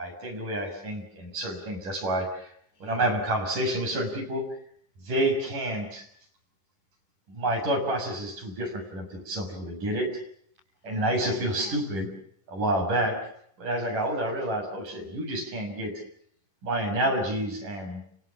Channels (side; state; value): left; late; 10 ms